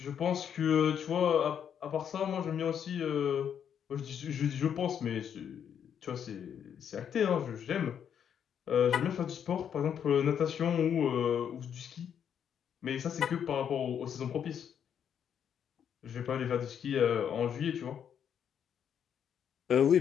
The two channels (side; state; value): right; quieter; 8.4 dB